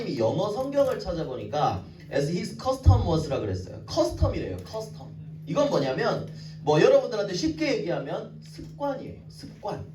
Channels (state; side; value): identical; both; correlation 1.00